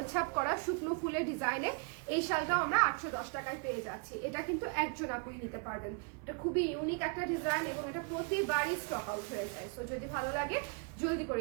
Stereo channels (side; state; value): left; quieter; 36.4 dB